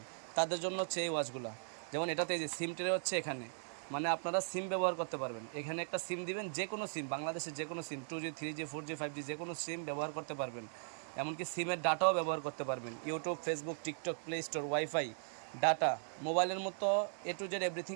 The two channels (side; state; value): left; silent; digital silence